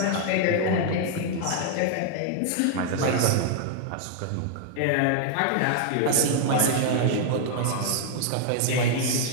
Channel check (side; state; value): both; different; correlation 0.00